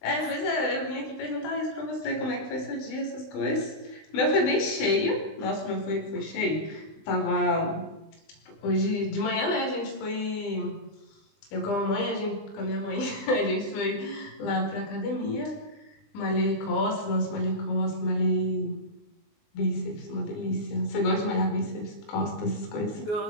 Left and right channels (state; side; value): late; right; 20 ms